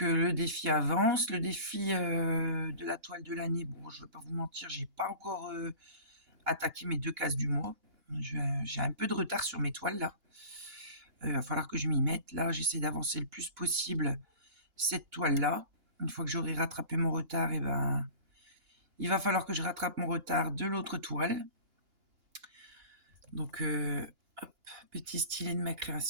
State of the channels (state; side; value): late; left; 2.9 ms